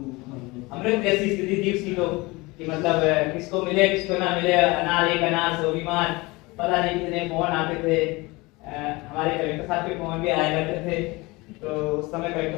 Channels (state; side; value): quieter; right; 23.4 dB